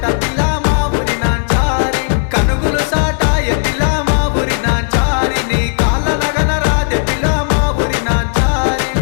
పిల్ల మా ఊరి నాంచారి కనుగులు సాటాయ పిల్ల మా ఊరి నాంచారి నీ కాళ్ళ నగన రాదే పిల్ల మా ఊరి నాంచారి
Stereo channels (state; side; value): silent; right; digital silence